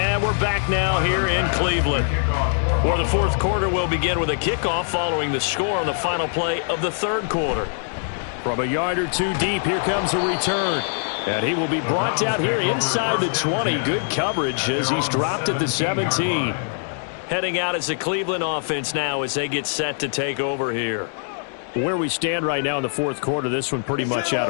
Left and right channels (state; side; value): silent; right; digital silence